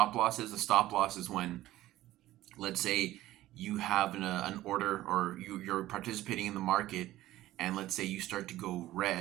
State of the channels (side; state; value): left; quieter; 15.4 dB